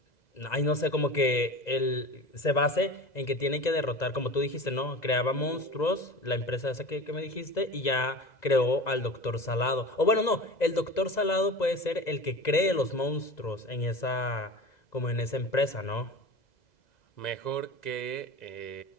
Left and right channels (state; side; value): late; right; 2.0 ms